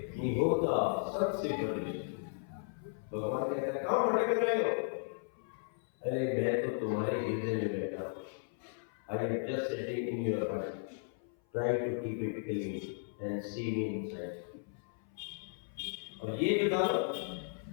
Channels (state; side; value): silent; right; 54 dB below the other